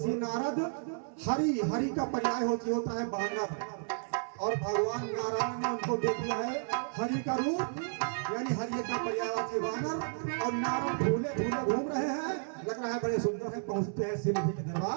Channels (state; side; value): silent; left; 56 dB below the other